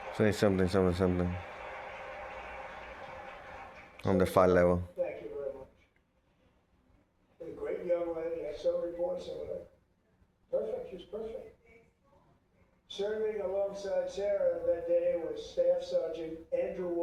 Say something, something, something on the fight level. Thank you very much. A great young lady. I saw reports of her. Perfect. She's perfect. Serving alongside Sarah that day was Staff Sergeant Andrew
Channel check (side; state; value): both; identical; correlation 1.00